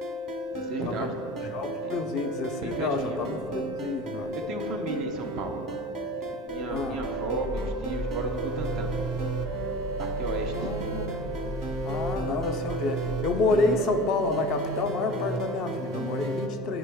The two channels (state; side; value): normal; both; correlation 0.35